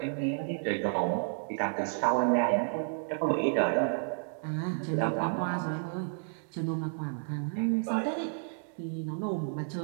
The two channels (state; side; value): silent; left; digital silence